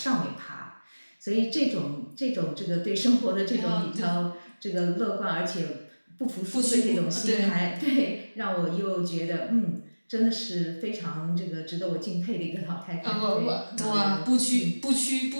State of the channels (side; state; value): both; inverted; correlation -1.00